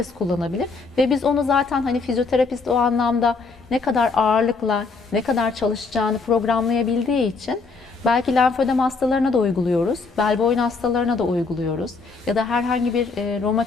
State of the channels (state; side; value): quieter; right; 4.3 dB